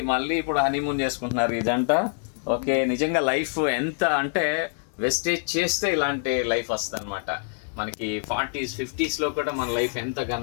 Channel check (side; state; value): right; silent; digital silence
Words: మళ్ళీ ఇప్పుడు హనీమూన్ చేసుకుంటున్నారు ఈ జంట. ఓకే, నిజంగా లైఫ్ ఎంత అంటే వెస్టేజ్ చేస్తే ఇలాంటి లైఫ్ వస్తుంది అనమాట. మనకి 40s 50sలో కూడా మన లైఫ్ ఎంత